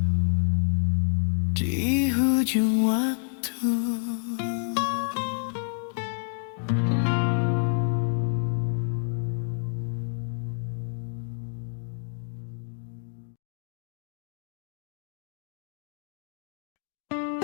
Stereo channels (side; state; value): right; silent; 59 dB below the other